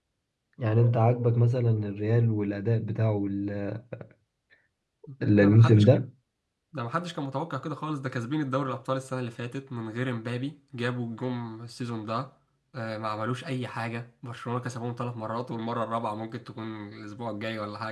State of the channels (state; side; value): identical; both; correlation 1.00